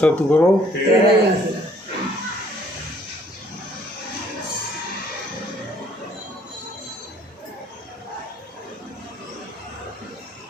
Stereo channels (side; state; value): both; normal; correlation 0.62